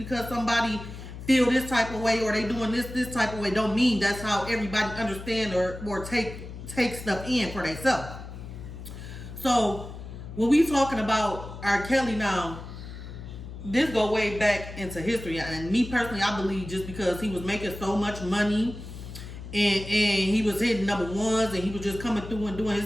somebody feel this type of way or they doing this type of way don't mean that's how everybody understand or take stuff in for themselves. So when we talking about R. Kelly now, this go way back into history, and me personally, I believe just because he was making so much money and he was hitting number ones and he was just coming through and doing his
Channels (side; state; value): left; noise; hum, 11 dB below the sound